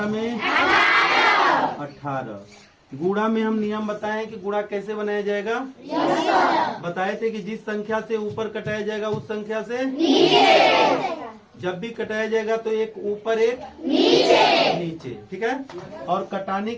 में 18। गुणा में हम नियम बताए कि गुणा कैसे बनाया जाएगा? बताए थे कि जिस संख्या से ऊपर कटाया जाएगा उस संख्या से नीचे। जब भी कटाया जाएगा तो एक ऊपर एक नीचे, ठीक है। और कटाने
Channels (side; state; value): both; identical; correlation 1.00